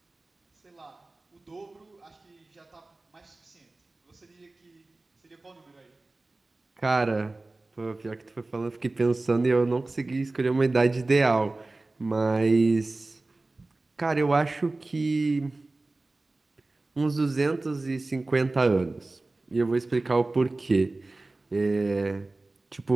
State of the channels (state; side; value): quieter; left; 3.1 dB